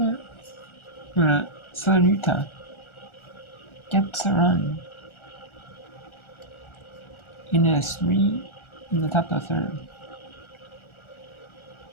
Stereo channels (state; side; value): late; right; 1.4 ms